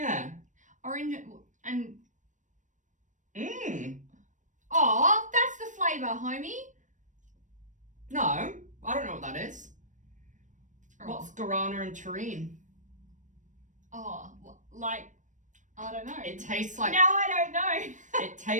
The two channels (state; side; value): late; left; 0.36 ms